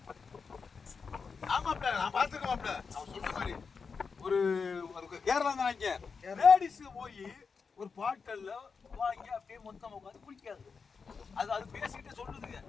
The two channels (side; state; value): right; quieter; 5.3 dB